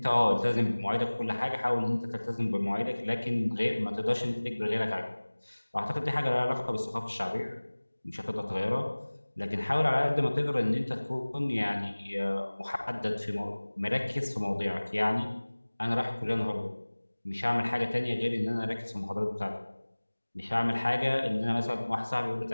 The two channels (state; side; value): inverted; both; correlation -1.00